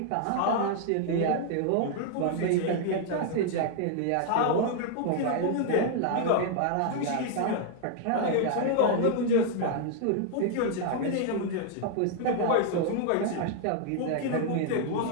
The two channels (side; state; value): both; different; correlation 0.00